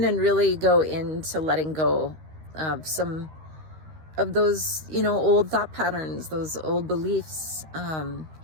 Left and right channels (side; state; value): left; late; 13 ms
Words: and really go into letting go of some of those, old thought patterns, those old beliefs.